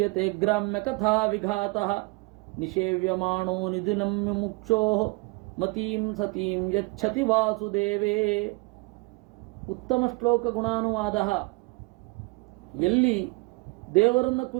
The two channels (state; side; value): quieter; left; 26.7 dB